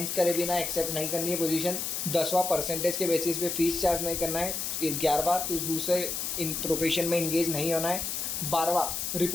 करे बिना एक्सेप्ट नहीं करनी है पोजीशन। 10वां, परसेंटेज के बेसिस पे फीस चार्ज नहीं करना है। 11वां, तो दूसरे इन प्रोफेशन में इंगेज नहीं होना है। 12वां,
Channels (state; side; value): noise; left; hiss, 2 dB below the sound